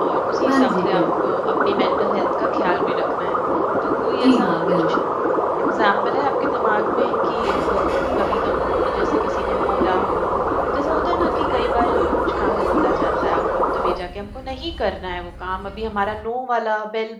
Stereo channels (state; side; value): identical; both; correlation 1.00